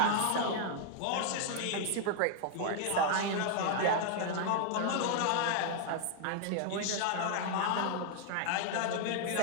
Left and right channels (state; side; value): different; both; correlation 0.00